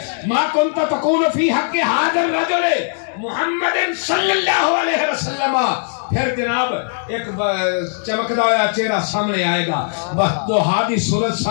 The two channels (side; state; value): right; silent; digital silence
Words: ما کنت تقول فی حق حاضر رجل محمد صلی اللہ علیہ وسلم پھر جناب ایک چمکدا ہوا چہرہ سامنے آئے گا بس دوحا دی صورت